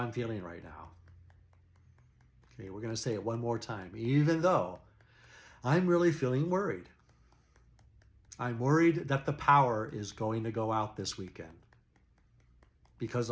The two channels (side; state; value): both; identical; correlation 1.00